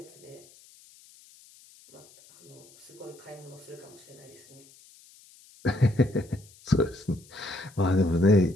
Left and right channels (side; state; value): left; noise; hiss, 25 dB below the sound